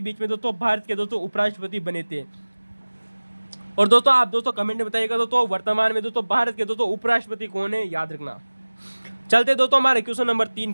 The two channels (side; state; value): both; inverted; correlation -1.00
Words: में दोस्तों भारत के दोस्तों उपराष्ट्रपति बने थे। और दोस्तों आप दोस्तों कमेंट में बताइएगा दोस्तों वर्तमान में दोस्तों भारत के दोस्तों उपराष्ट्रपति कौन है, याद रखना। चलते दोस्तों हमारे क्वेश्चन नंबर 3